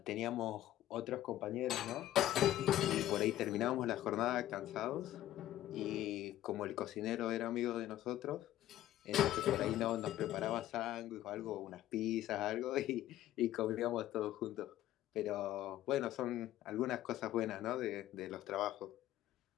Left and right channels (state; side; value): quieter; right; 13.6 dB